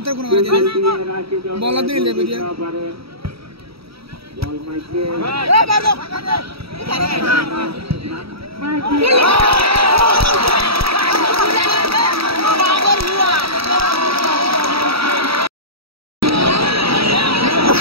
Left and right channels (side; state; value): left; late; 0.76 ms